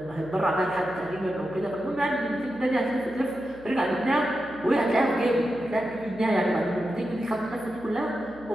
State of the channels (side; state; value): right; noise; hum, 22 dB below the sound